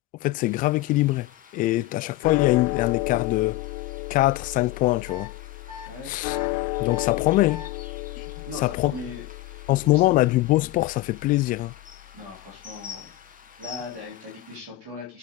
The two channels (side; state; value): right; quieter; 16.9 dB